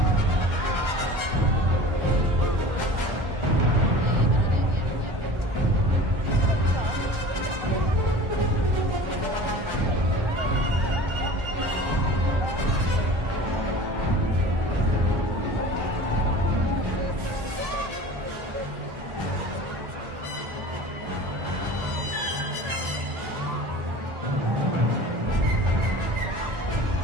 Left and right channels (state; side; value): late; left; 1.4 ms